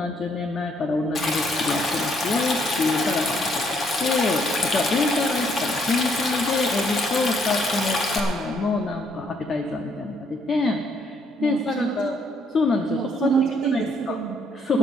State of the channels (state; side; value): normal; both; correlation 0.69